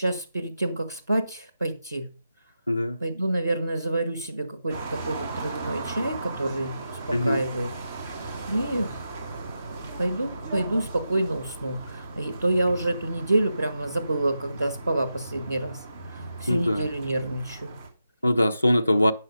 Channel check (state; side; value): inverted; both; correlation -0.88